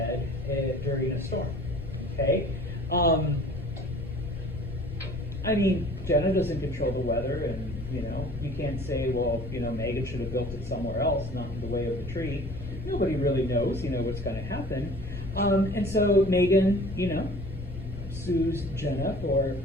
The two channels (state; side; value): noise; left; rumble, 10 dB below the sound